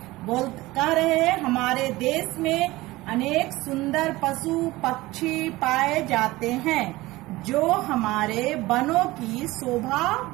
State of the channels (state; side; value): quieter; left; 19.2 dB